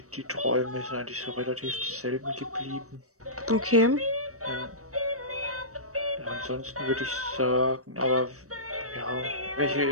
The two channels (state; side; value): late; left; 0.65 ms